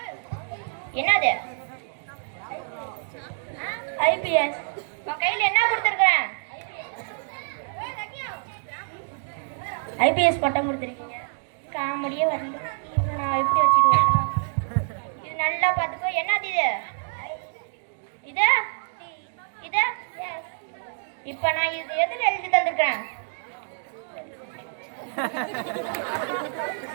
என்னது? ஐபிஎஸ். உன் கையில என்ன கொடுத்துருக்கேன்? ஐபிஎஸ் பட்டம் கொடுத்துருக்கீங்க. காமெடியே வரல. நான் எப்படி வச்சுட்டு வரணும்? இது நல்லா பார்த்துக்கோ. என்னது இது? இது இது இப்ப நான் இது எதுல எழுதி தந்திருக்கேன்?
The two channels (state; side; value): silent; left; digital silence